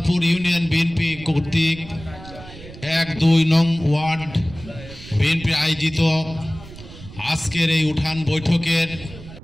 ইউনিয়ন বিএনপি কর্তৃক ১-২ নং ওয়ার্ড বিএনপি আয়োজিত আজকের এই উঠান বৈঠকের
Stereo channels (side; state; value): right; noise; rumble, 16 dB below the sound